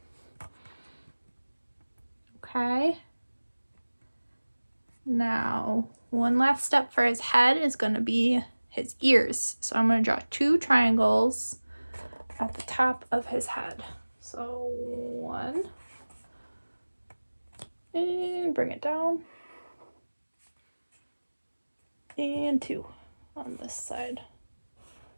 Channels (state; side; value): inverted; both; correlation -1.00